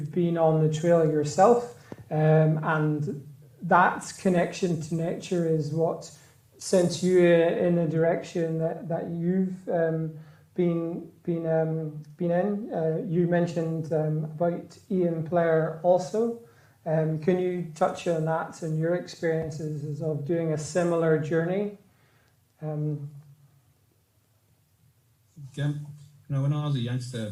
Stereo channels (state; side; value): identical; both; correlation 1.00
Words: been on the trail yourself, and that connection to nature is what sent you in a direction that you've been in. You mentioned about Ian Blair also. Can you touch on that and your experiences of doing a similar journey? When I was a youngster,